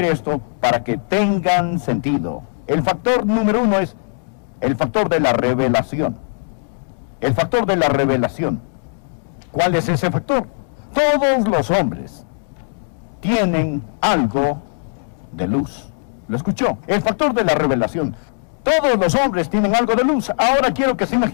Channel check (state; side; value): silent; right; digital silence